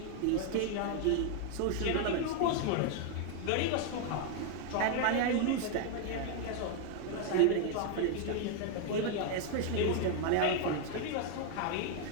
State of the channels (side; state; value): both; different; correlation 0.00